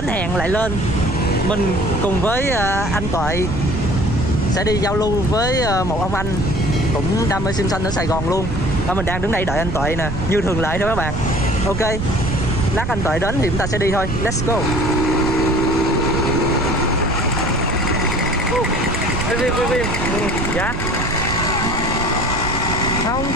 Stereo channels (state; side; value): noise; right; rumble, 4 dB below the sound